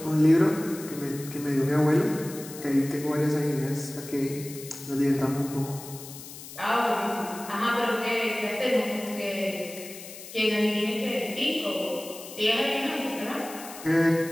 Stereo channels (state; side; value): noise; left; hiss, 14 dB below the sound